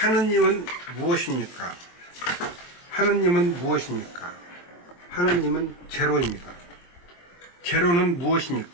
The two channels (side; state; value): right; late; 23 ms